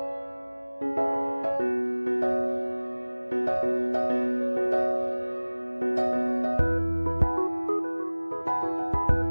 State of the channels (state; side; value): inverted; both; correlation -1.00